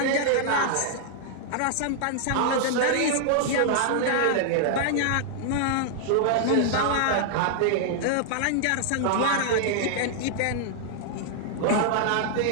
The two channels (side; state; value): both; different; correlation -0.01